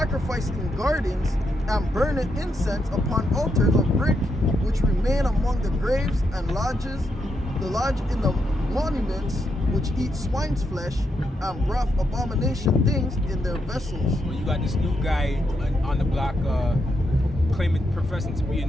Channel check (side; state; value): both; normal; correlation 0.81